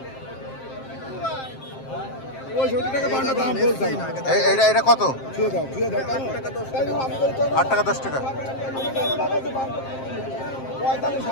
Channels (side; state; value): right; late; 7.6 ms